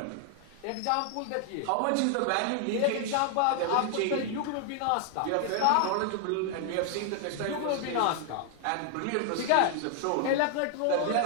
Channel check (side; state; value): both; different; correlation 0.00